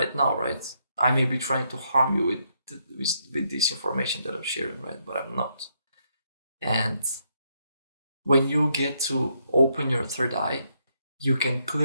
now, right? I may be trying to harm you with this information that I'm sharing, right? But I'm not. And when you get to open your third eye, you can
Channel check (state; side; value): inverted; both; correlation -0.76